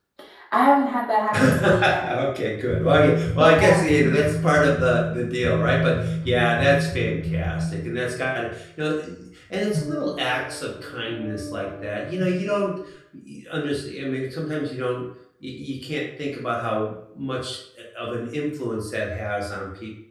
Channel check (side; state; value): both; identical; correlation 1.00